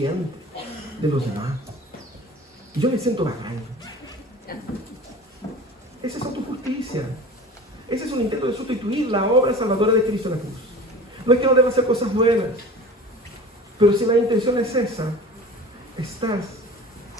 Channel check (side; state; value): both; normal; correlation 0.39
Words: de los demás. Y yo me siento bacán. Esa es autojusticia. Ese es un intento de sustituir la obra salvadora de Cristo en la cruz. No es que no deba hacer cosas buenas, pero si la intención es esa, estás